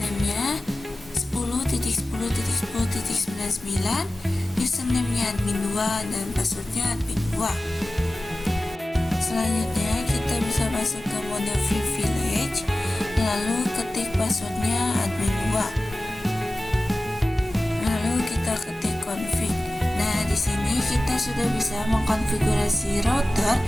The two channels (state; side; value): normal; both; correlation 0.96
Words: 10.10.10.99, username-nya admin 2 dan passwordnya admin 2. Selanjutnya kita bisa masuk ke mode privilege, lalu ketik passwordnya admin 2. Lalu kita ketik config. Nah, di sini kita sudah bisa mengkonfigurasi router